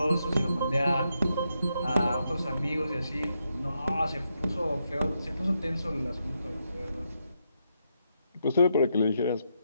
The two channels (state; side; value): inverted; both; correlation -0.82